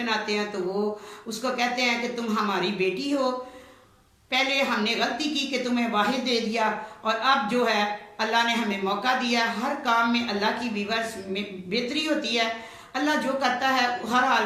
हैं। तो वो उसको कहते हैं कि तुम हमारी बेटी हो, पहले हमने गलती की कि तुम्हें वाहिद दे दिया, और अब जो है अल्लाह ने हमें मौका दिया। हर काम में अल्लाह की वीवर्स में बेहतरी होती है, अल्लाह जो करता है हर हाल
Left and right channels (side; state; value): both; identical; correlation 1.00